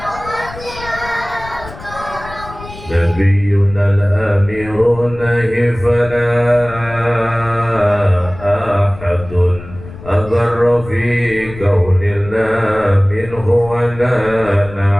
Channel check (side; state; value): left; noise; rumble, 15 dB below the sound